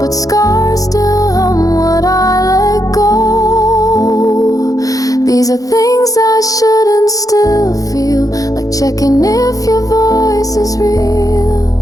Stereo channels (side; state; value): right; late; 0.17 ms